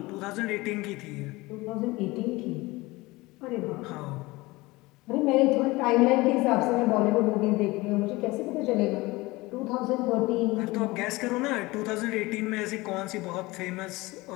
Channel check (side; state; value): right; quieter; 21.5 dB